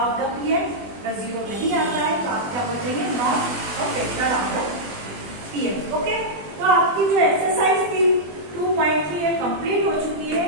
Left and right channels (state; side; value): late; left; 20 ms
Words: the px. अगर 0 नहीं आता है तो आप क्या बोल देंगे? Not a factor of the px. Okay, तो आपकी जो एक्सरसाइज थी 2.3 ये कंप्लीट हो चुकी है।